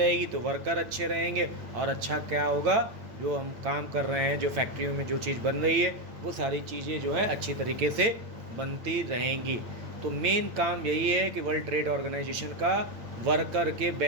तो वर्कर अच्छे रहेंगे, और अच्छा क्या होगा? जो हम काम कर रहे हैं, जो फैक्ट्रियों में जो चीज़ बन रही है वो सारी चीज़ें जो है अच्छी तरीके से बनती रहेंगी। तो मेन काम यही है कि वर्ल्ड ट्रेड ऑर्गेनाइजेशन का वर्कर के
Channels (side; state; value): left; late; 8.9 ms